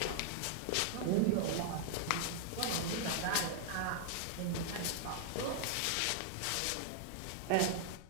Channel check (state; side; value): different; both; correlation -0.01